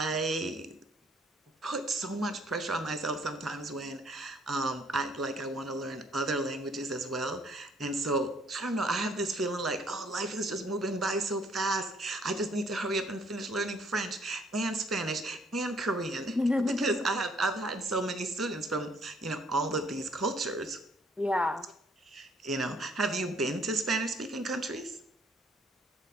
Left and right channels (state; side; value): normal; both; correlation 0.63